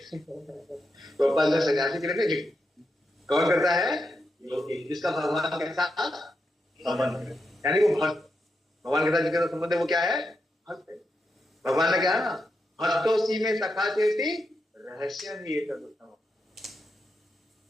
तो अपन सन्यासी के लिए नहीं, कौन करता है? योगी, जिसका भगवान के साथ संबंध है, यानी वो भक्त। भगवान के साथ जिसका संबंध है वो क्या है? भक्त है। भगवान ने क्या है ना, भक्तों में सखा चेती रहस्य ही एक उत्तम।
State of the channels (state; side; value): normal; both; correlation 0.85